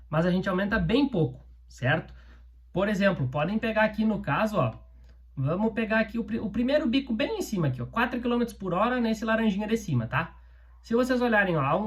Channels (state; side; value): identical; both; correlation 1.00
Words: Mas a gente aumenta bem pouco, certo? Por exemplo, podem pegar aqui no caso, ó, vamos pegar aqui o primeiro bico bem em cima aqui, ó, 4 km por hora nesse laranjinha de cima, tá? Se vocês olharem, ó, a